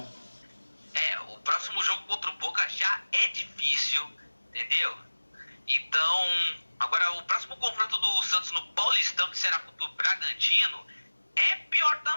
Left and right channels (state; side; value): inverted; both; correlation -1.00